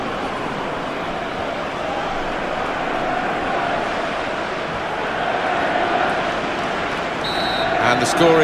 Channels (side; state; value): both; identical; correlation 1.00